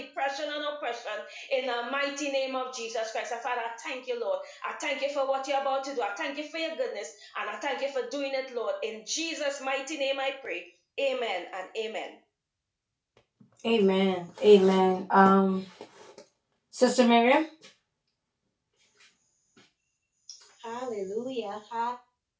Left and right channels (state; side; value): identical; both; correlation 1.00